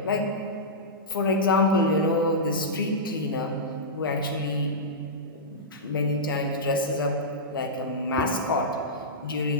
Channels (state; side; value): normal; both; correlation -0.13